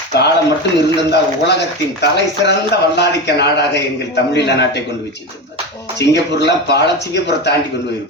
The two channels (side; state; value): both; normal; correlation 0.21